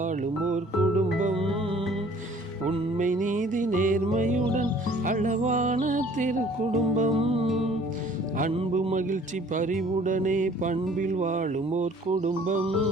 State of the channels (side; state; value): both; normal; correlation 0.54